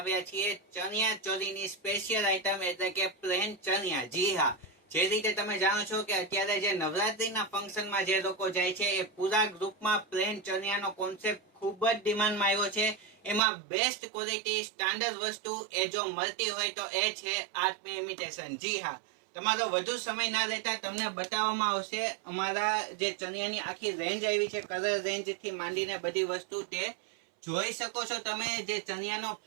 છીએ ચણિયા ચોળીની સ્પેશિયલ આઇટમ એટલે કે પ્લેન ચણિયા. જી હા, જે રીતે તમે જાણો છો કે અત્યારે જે નવરાત્રીના ફંક્શનમાં જે લોકો જાય છે એ પૂરા ગ્રુપમાં પ્લેન ચણિયાનો કોન્સેપ્ટ ખૂબ જ ડિમાન્ડમાં આવ્યો છે. એમાં બેસ્ટ ક્વોલિટી સ્ટાન્ડર્ડ વસ્તુ એ જો મળતી હોય તો એ છે આર્ટ ઇમિટેશન. જી હા, તમારો વધુ સમય ના લેતા તમને બતાવવામાં આવશે અમારા જે ચણિયાની આખી રેન્જ આવી છે, કલર રેન્જ થી માંડીને બધી વસ્તુ તે જોઈ શકો છો તમે. જે ચણિયાનો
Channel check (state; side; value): drops out; left; at 13.4 s